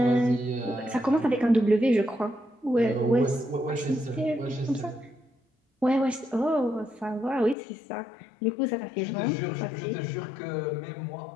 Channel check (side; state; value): right; drops out; at 7.6 s